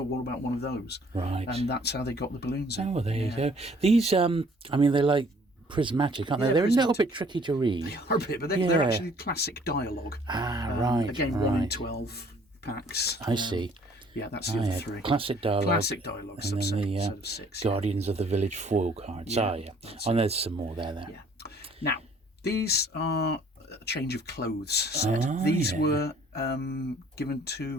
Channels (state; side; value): normal; both; correlation 0.57